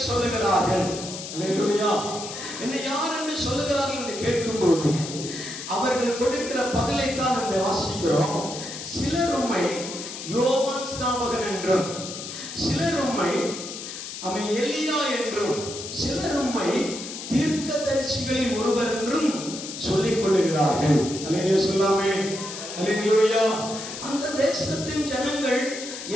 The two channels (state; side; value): noise; left; hiss, 9 dB below the sound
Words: சொல்லுகிறார்கள்? அல்லேலூயா. என்னை யார் என்று சொல்லுகிறார்கள் என்று கேட்கும்போது அவர்கள் கொடுக்கிற பதிலை தான் அந்த வாசிக்கிறோம். சிலர் உம்மை யோவான் ஸ்நாபகன் என்றும், சிலர் உம்மை அவன் எலியா என்றும், சிலர் உம்மை தீர்க்கதரிசிகளில் ஒருவர் என்றும் சொல்லிக் கொள்ளுகிறார்கள். அல்லேலூயா சொல்லாமே? அல்லேலூயா. அந்த தேசத்தின் ஜனங்கள்